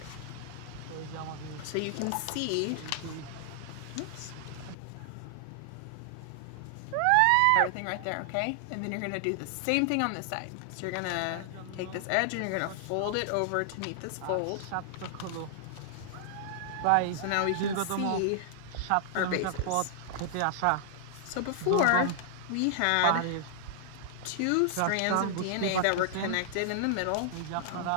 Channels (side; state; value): both; different; correlation -0.01